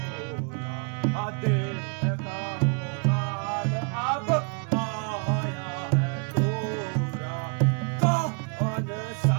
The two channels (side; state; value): left; quieter; 38.4 dB